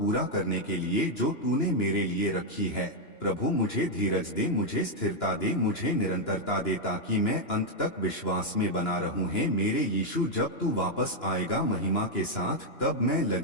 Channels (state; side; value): late; right; 2.9 ms